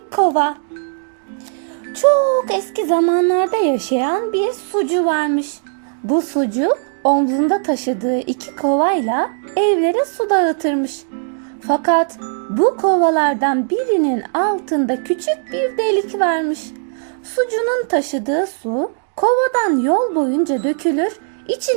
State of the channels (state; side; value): silent; left; digital silence